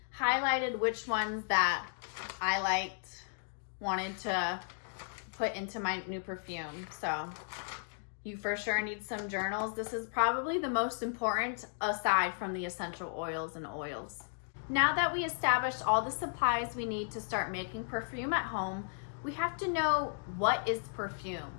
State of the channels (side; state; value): right; silent; digital silence